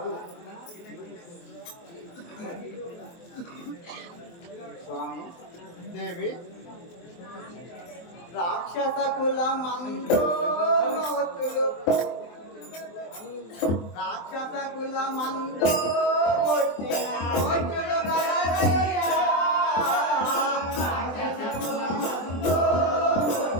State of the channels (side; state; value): right; late; 23 ms